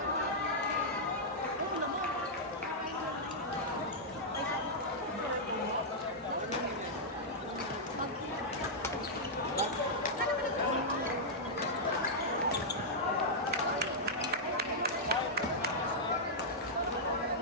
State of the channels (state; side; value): normal; both; correlation -0.08